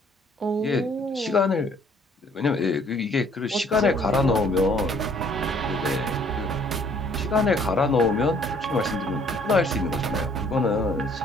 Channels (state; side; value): normal; both; correlation 0.60